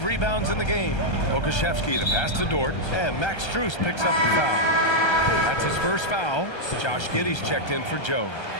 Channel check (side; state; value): right; late; 1.3 ms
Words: rebounds in the game. Okashevsky, the pass to Dort. And Max Strus picks up the foul. That's his first foul. Josh Giddey's checked in for Joe.